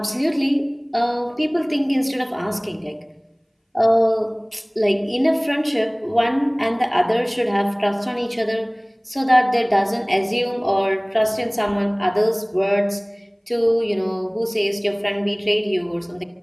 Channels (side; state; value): both; identical; correlation 1.00